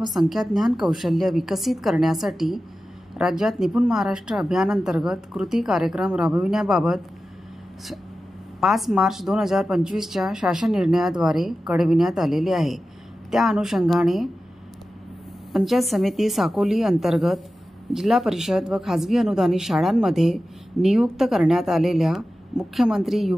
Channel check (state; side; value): normal; both; correlation 0.94